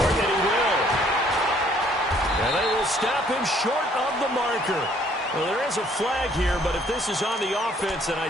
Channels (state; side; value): normal; both; correlation 0.62